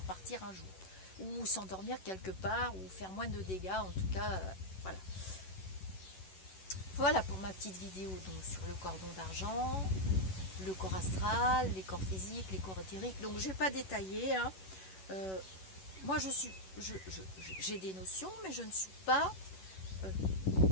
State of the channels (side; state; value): right; late; 11 ms